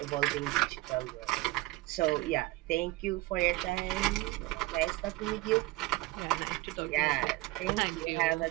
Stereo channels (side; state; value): left; quieter; 19.6 dB